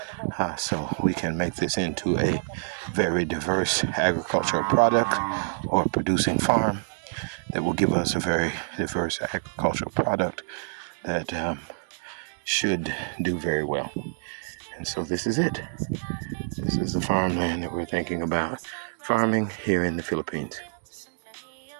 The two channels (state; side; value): silent; left; digital silence